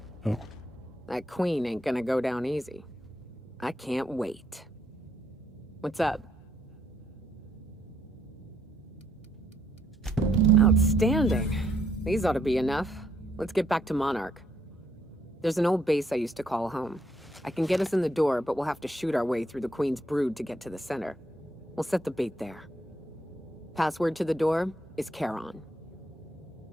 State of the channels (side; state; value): both; normal; correlation 0.72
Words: Oh. That queen ain't gonna go down easy. I can't wait. What's up? Outstanding. These ought to be enough. Let's get back to Monarch. There's an old base I used to call home. I can get us in the door, but we'll have to shoot our way through the Queen's brood to get to the center. We'll set the bait there. Password to the door is Charon.